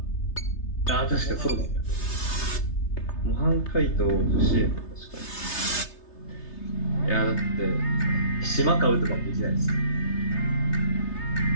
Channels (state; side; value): late; right; 3.3 ms